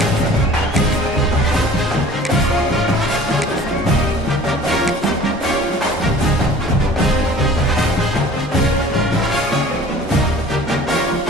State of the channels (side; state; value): both; normal; correlation 0.47